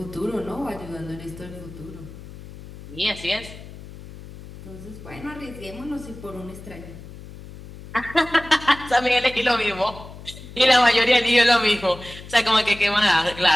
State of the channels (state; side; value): noise; left; hum, 16 dB below the sound